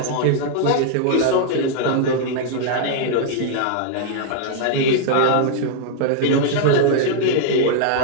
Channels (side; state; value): both; different; correlation -0.01